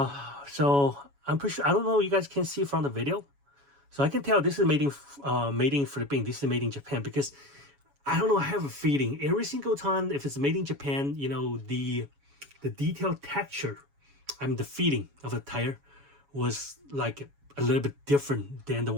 I'm pretty sure, I don't know, you guys can see from the video. So I can tell this is made in Philippines. This is made in Japan, because I don't know, I have a feeling every single time if it's made in Japan, you know, the detailed texture, I mean the feeling of the tire was like a little bit different than the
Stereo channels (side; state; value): left; late; 7.1 ms